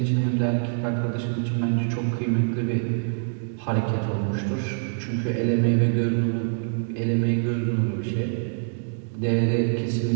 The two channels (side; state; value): left; silent; digital silence